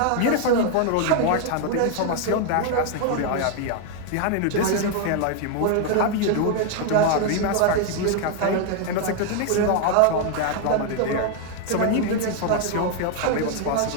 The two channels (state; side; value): different; both; correlation 0.00